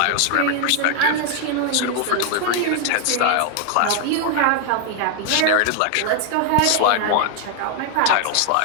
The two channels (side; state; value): both; different; correlation 0.00